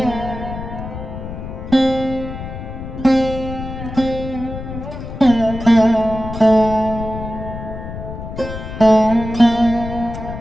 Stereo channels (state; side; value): noise; left; rumble, 9 dB below the sound